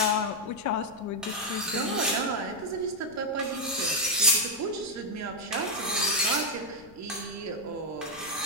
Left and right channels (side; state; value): left; noise; rumble, 24 dB below the sound